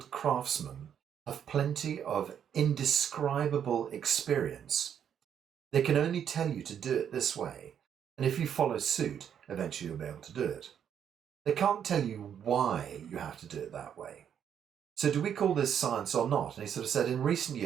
craftsmen have plenty of indescribable experience. They can only tell you to do it this way, and if you follow suit, eventually you'll be able to do it. They can't tell you why you have to do it that way. So do we call this science or not? And he sort of said, in recent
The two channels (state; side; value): quieter; left; 8.7 dB